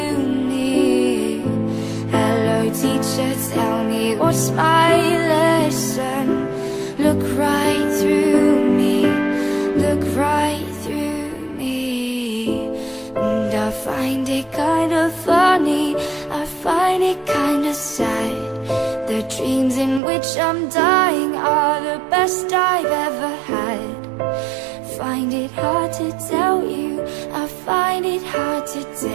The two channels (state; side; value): drops out; left; at 20.0 s